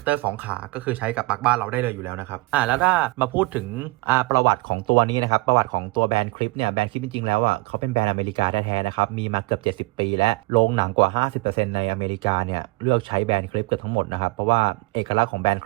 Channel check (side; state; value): left; quieter; 23.1 dB